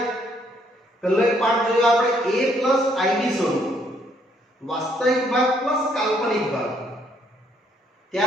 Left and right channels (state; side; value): normal; both; correlation 0.69